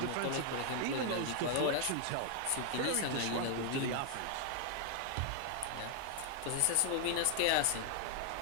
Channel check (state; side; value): different; both; correlation 0.00